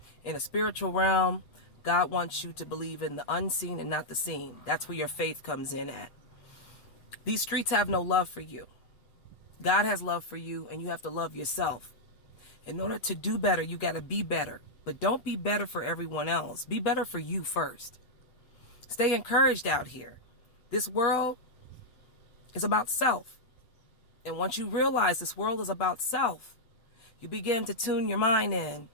in a spiritual realm, God wants you to believe in the unseen and not the seen. That's where your faith comes in at. These streets have no love for you. God has love for you, and you have to love yourself. In order to do better, you got to be better. But don't be better for everyone else. Be better for you first. Stay encouraged out here. This world is about self. And once you realize this world is about self, you begin to tune your mind in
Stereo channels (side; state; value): right; late; 8.4 ms